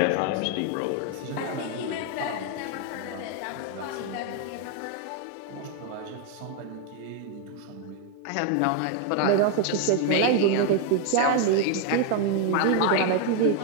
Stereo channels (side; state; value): both; different; correlation 0.01